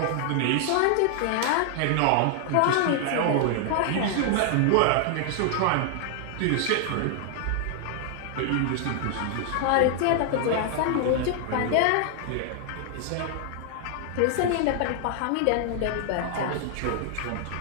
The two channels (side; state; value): both; different; correlation 0.00